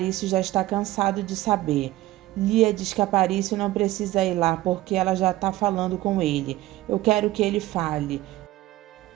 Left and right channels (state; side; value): quieter; left; 16.6 dB